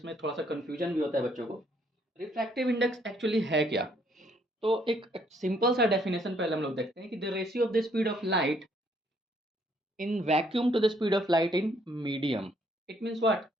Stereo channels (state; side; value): normal; both; correlation 0.68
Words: में थोड़ा सा कन्फ्यूजन भी होता है बच्चों को। रिफ्रैक्टिव इंडेक्स एक्चुअली है क्या? तो एक सिंपल सा डेफिनेशन पहले हम लोग देखते हैं कि the ratio of the speed of light in vacuum to the speed of light in medium. It means what,